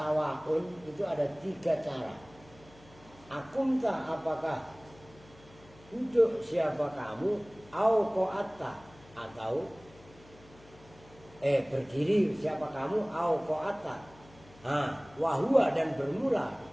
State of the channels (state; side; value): noise; left; hum, 24 dB below the sound